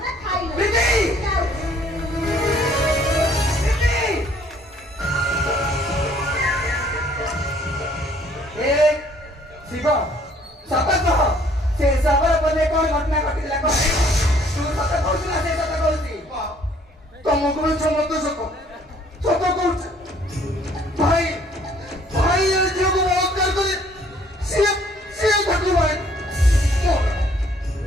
ଶିବ ସତ କହ, ସେ ସବର ପଦେ କଣ ଘଟଣା ଘଟିଥିଲା କହ। ତୁ ସତ କହୁଛୁ ନା ସେ ସତ କହୁଛି? ତମକୁ ବି ସମସ୍ତ ସତ ସତ କହୁଛି। ଭାଇ ଭାଇ ଏ ଝିଅକୁ ବଳାତ୍କାର କରି ସିଏ ସିଏ ତାକୁ ଭାଇ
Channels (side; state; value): both; normal; correlation 0.61